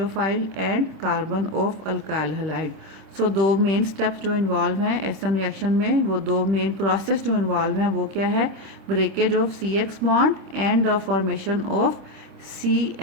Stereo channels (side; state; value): left; late; 26 ms